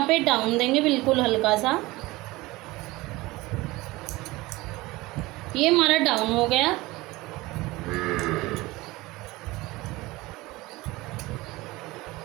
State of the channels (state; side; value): quieter; left; 20.6 dB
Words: पे डाउन देंगे बिल्कुल हल्का सा। ये हमारा डाउन हो गया।